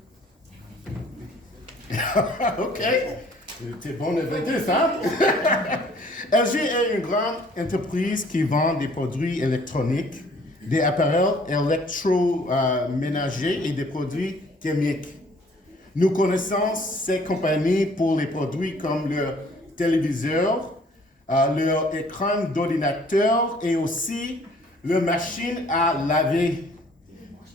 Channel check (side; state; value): both; normal; correlation 0.57